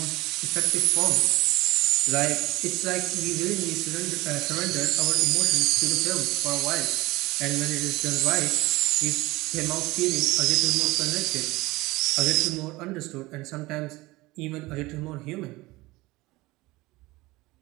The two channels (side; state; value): left; quieter; 20.6 dB